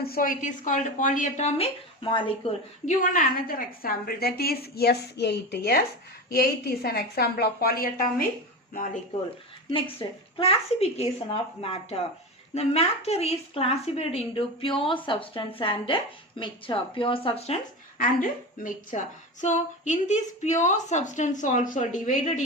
So it is called polyatomic molecule. Given another example, that is S8. S8 is an example of polyatomic molecule. Next, classification of matter. The matter is classified into pure substance and mixture. Pure substance and mixture. So in this pure substance also divided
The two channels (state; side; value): normal; both; correlation 0.24